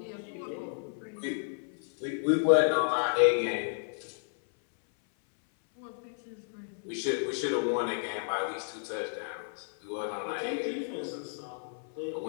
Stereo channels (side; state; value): right; silent; 56 dB below the other